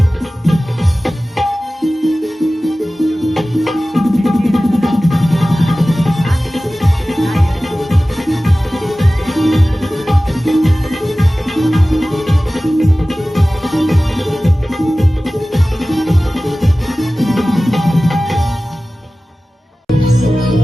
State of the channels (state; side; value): normal; both; correlation 0.97